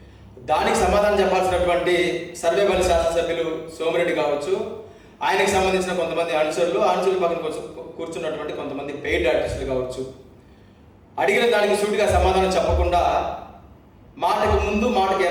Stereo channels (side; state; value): both; identical; correlation 1.00